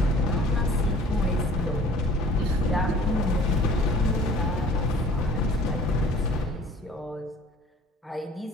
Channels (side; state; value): both; normal; correlation 0.49